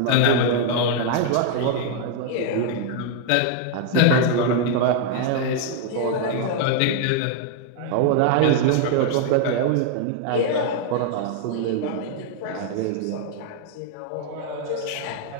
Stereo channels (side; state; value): both; different; correlation 0.00